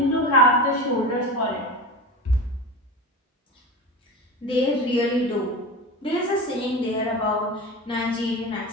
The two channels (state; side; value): normal; both; correlation 0.26